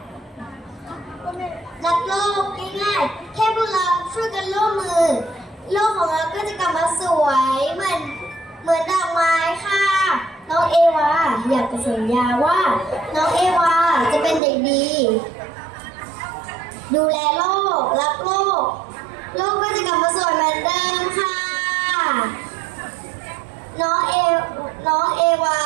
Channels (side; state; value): left; drops out; at 14.4 s